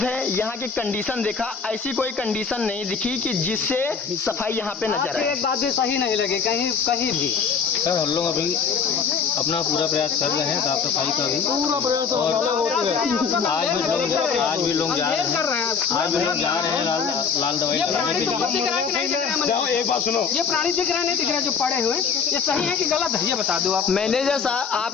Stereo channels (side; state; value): right; quieter; 6.0 dB